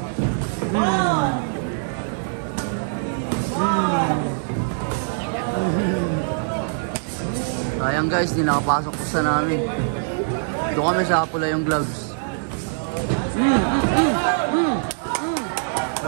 Sayang guys, di nakapasok ko sa namin. Doon kami sa pula yung gloves.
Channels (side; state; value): left; silent; 55 dB below the other